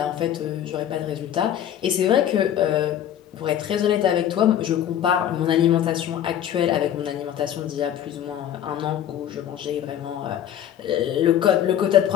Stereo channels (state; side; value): quieter; right; 10.4 dB